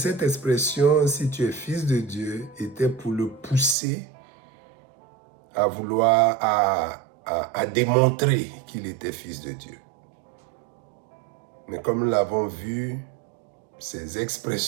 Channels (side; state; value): left; drops out; at 3.8 s